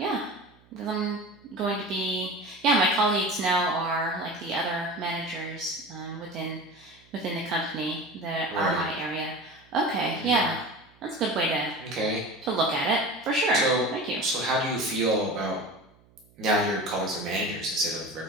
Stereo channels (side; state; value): right; noise; hum, 29 dB below the sound